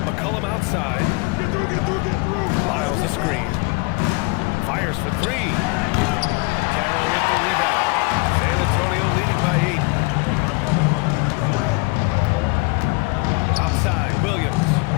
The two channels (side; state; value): right; quieter; 27.1 dB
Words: McCollum outside. Get through. Lyles a screen. Fires for 3. Carroll with the rebound. San Antonio leading by 8. Outside, Williams.